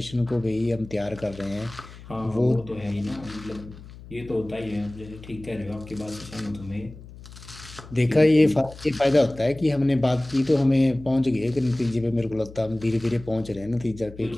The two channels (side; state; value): left; noise; hum, 17 dB below the sound